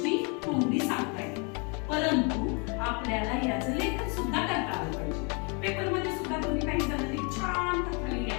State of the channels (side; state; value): right; quieter; 34.0 dB